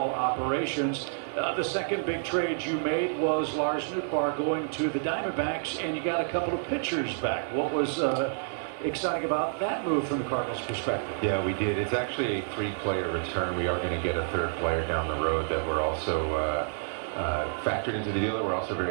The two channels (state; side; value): silent; left; digital silence